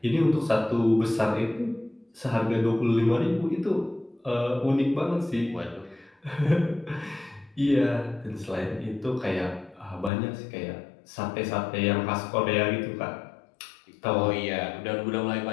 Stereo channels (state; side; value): drops out; right; at 10.1 s